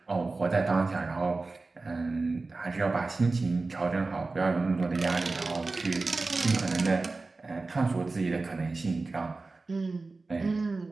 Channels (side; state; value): left; quieter; 3.6 dB